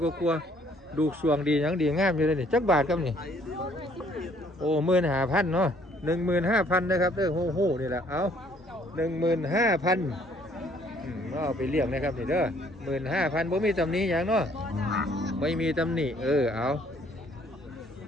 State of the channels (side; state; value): both; normal; correlation 0.62